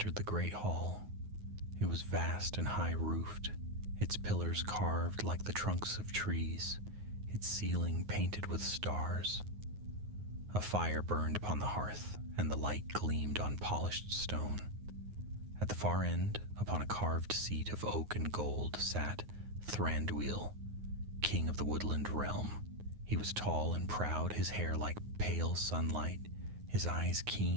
the great hall. It was vast and high-roofed, its pillars carved like the trunks of trees, its ceiling painted with stars. A fire burned upon the hearth, and the light gleamed on polished stone. At the far end, upon a carved seat of oak and gold, sat Thranduil, king of the woodland realm. He was tall and proud, his hair like pale sunlight, his eyes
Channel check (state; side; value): late; left; 9.6 ms